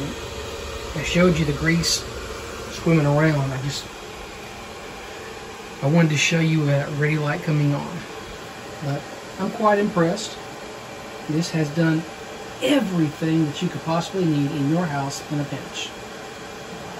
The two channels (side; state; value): both; identical; correlation 1.00